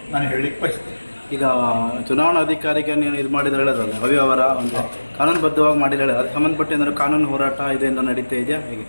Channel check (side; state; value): both; inverted; correlation -1.00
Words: ನಾನು ಹೇಳಲಿಕ್ಕೆ ಬಯಸ್ತೇನೆ. ಈಗ ಚುನಾವಣಾ ಅಧಿಕಾರಿಗೆ ನೀವು ಇದು ಮಾಡಿದ್ರೆ ಹೇಳೋದಲ್ಲ ಅವ್ಯವಹಾರ ಒಂದು ಕಾನೂನುಬದ್ಧವಾಗಿ ಮಾಡಿದ್ರೆ ಹೇಳೋದು, ಅದಕ್ಕೆ ಸಂಬಂಧಪಟ್ಟ ಏನಾದ್ರು ಕಾನೂನು ಹೋರಾಟ ಇದರಿಂದ ನಡೀತಾ ಇದೆಯಾ ಹೇಗೆ